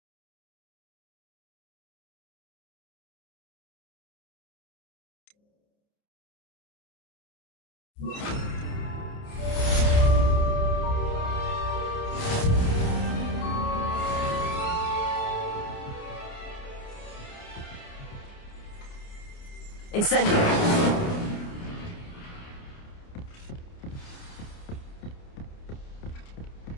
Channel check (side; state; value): right; late; 29 ms